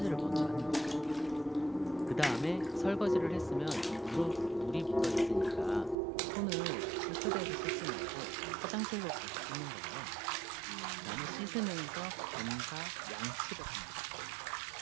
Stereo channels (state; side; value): drops out; left; at 6.0 s